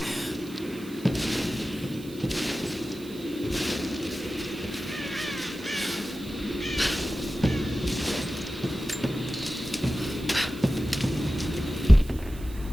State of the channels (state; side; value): noise; right; hiss, 19 dB below the sound